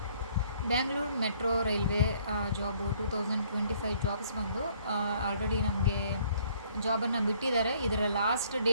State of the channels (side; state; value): both; inverted; correlation -0.61